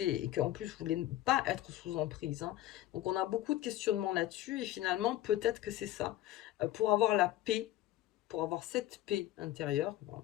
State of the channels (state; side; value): quieter; right; 14.3 dB